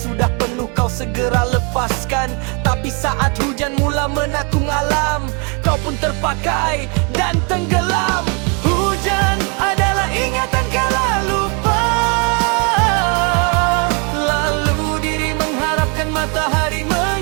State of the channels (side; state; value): left; quieter; 34.4 dB